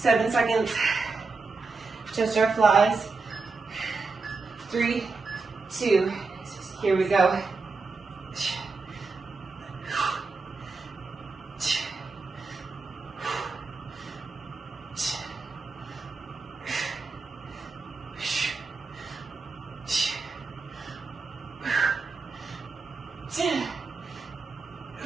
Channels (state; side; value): quieter; left; 4.1 dB